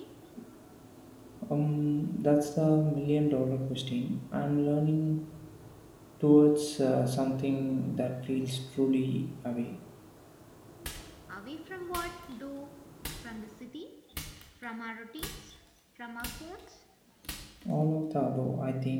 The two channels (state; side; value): identical; both; correlation 1.00